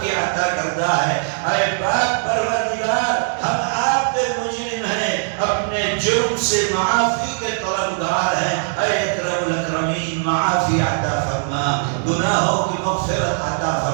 کی عطا کردہ ہے۔ اے پاک پروردگار ہم آپ کے مجرم ہیں، اپنے جرم سے معافی کے طلبگار ہیں۔ اے اکرم الاکرمین معافی عطا فرما، گناہوں کی مغفرت عطا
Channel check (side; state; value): left; silent; 59 dB below the other